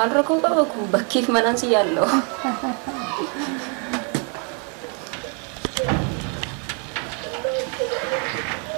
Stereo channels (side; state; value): left; quieter; 38.5 dB